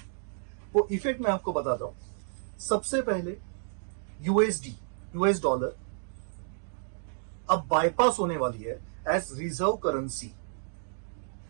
वो इफेक्ट मैं आपको बताता हूं। सबसे पहले यूएसडी, यूएस डॉलर अब बाईपास होने वाली है एज रिजर्व करेंसी।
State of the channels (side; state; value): left; silent; digital silence